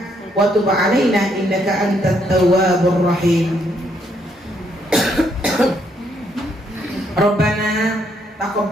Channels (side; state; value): both; normal; correlation 0.73